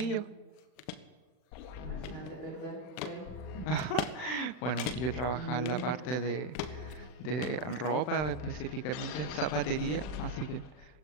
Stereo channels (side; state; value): right; late; 40 ms